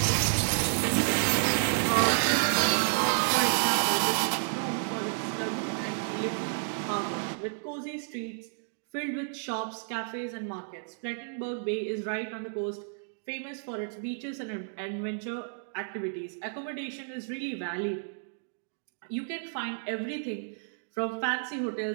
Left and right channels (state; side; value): silent; left; digital silence